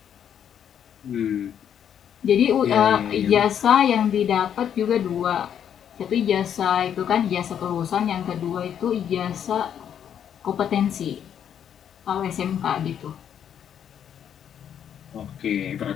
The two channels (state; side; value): quieter; right; 9.0 dB